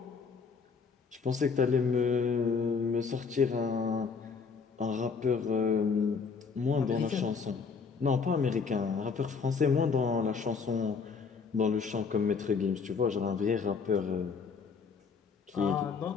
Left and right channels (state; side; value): quieter; right; 5.3 dB